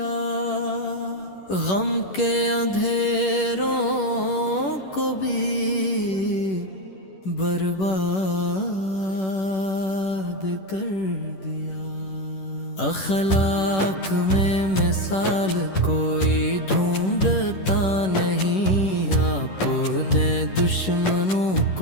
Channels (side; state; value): right; late; 11 ms